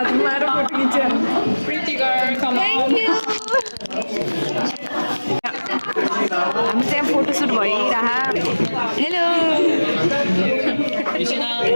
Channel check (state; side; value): inverted; both; correlation -1.00